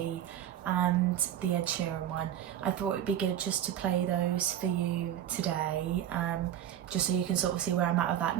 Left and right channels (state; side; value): quieter; left; 11.0 dB